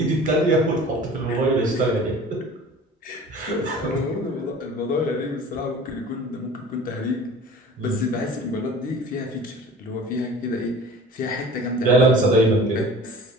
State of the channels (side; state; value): both; normal; correlation 0.43